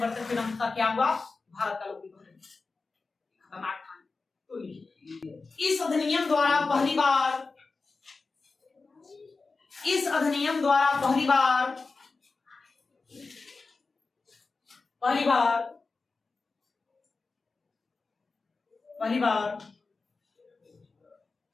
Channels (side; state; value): right; quieter; 4.0 dB